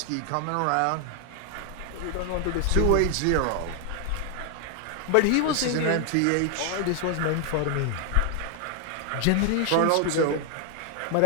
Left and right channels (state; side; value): different; both; correlation 0.00